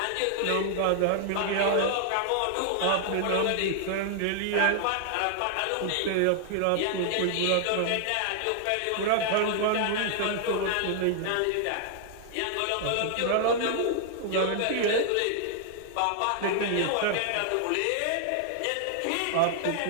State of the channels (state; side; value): different; both; correlation 0.00